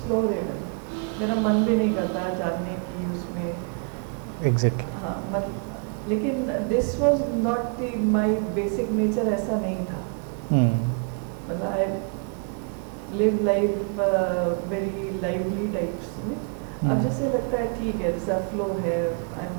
even. मेरा मन भी नहीं करता है जानने की उसमें. एग्जैक्टली. हाँ, मतलब लेकिन this was not the my basic nature, ऐसा नहीं था. मतलब I live life very lively types में. अब जैसे लगता है ठीक है, जैसा फ्लो है, आई एम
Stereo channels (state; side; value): quieter; left; 39.7 dB